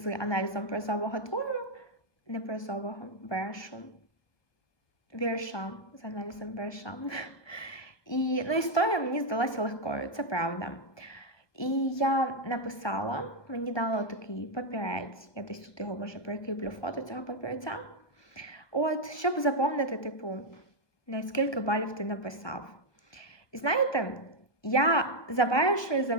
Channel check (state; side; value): late; right; 1.2 ms